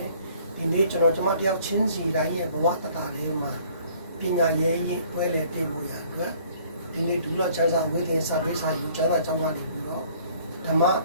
ဒီနေ့ကျွန်တော်တယောက်ချင်းစီတိုင်းရဲ့ဘဝတတာလေးမှာပညာရေးရင်တွဲလေပြေဖို့ရအတွက်ဒီနေ့ဒူလောချမ်းသာဝိသင်စာပေးစာယူကျမ်းစာကျောင်းကနေပြီးတော့ဓမ္မ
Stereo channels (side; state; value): both; inverted; correlation -0.57